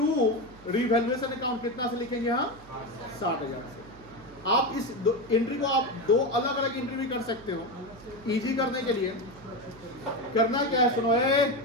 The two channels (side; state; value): right; noise; hum, 22 dB below the sound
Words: रिवैल्यूएशन अकाउंट कितना से लिखेंगे? यहाँ 60,000 से। आप इस एंट्री को आप 2 अलग अलग एंट्री भी कर सकते हो। इजी करने के लिए करना क्या है, सुनो